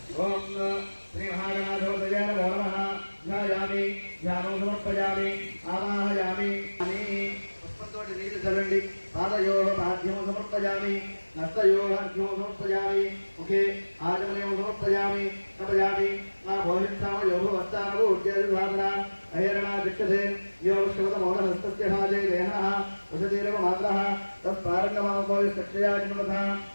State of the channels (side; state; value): both; inverted; correlation -1.00